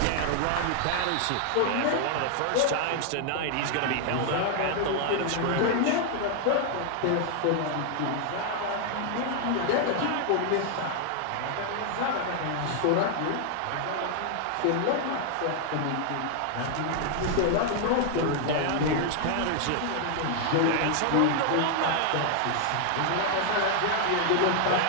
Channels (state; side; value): different; both; correlation 0.00